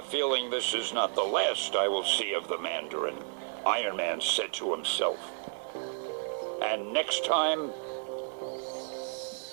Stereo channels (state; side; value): silent; left; digital silence